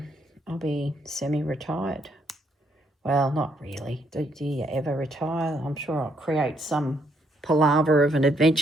I'll be semi-retired. Well, not really. Do you ever retire? I'm sure I'll create some palaver of an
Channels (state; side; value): normal; both; correlation 0.73